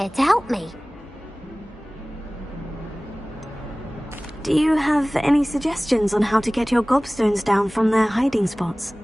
to help me. Do you have any suggestions on how to get your gobstones down from their hiding spots?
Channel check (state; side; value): normal; both; correlation 0.98